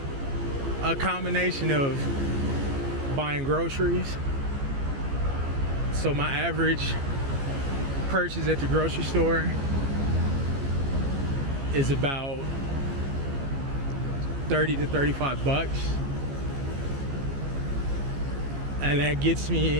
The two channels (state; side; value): late; left; 15 ms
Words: a combination of buying groceries. So my average purchase at the grocery store is about 30 to 35 bucks. And that gets